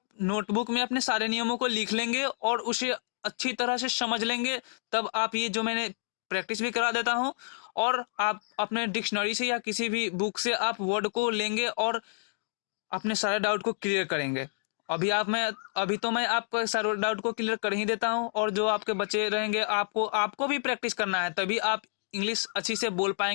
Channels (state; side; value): silent; right; digital silence